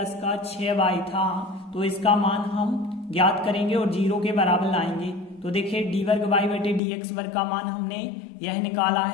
का 6y था। तो इसका मान हम ज्ञात करेंगे और 0 के बराबर लाएंगे। तो देखिए डी वर्ग वाई बटे डी एक्स वर्ग का मान हमने यह निकाला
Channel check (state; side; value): drops out; right; at 6.8 s